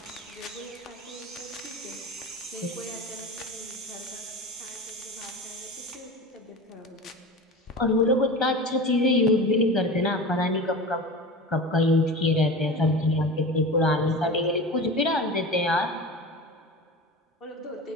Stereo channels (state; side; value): normal; both; correlation 0.31